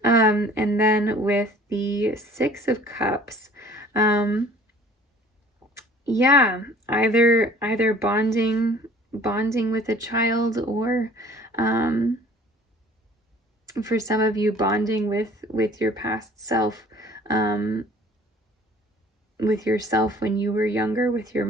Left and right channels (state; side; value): normal; both; correlation 0.50